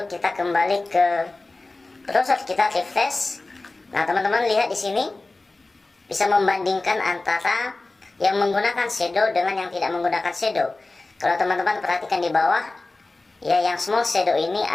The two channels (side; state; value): right; quieter; 3.2 dB